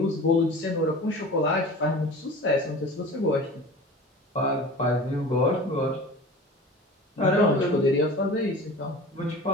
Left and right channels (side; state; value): both; normal; correlation 0.38